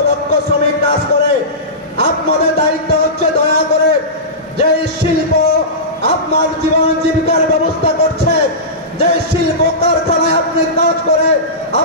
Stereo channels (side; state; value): both; normal; correlation -0.20